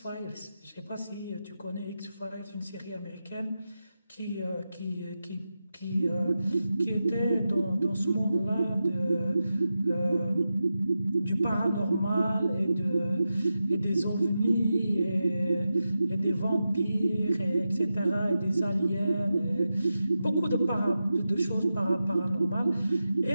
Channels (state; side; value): inverted; both; correlation -0.91